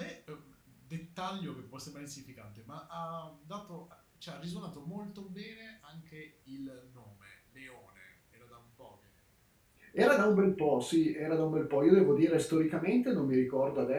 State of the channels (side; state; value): both; identical; correlation 1.00